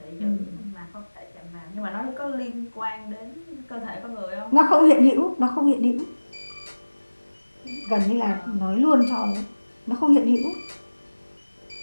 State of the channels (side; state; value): both; inverted; correlation -1.00